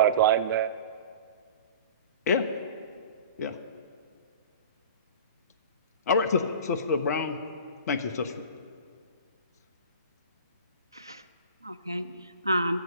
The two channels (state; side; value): inverted; both; correlation -0.39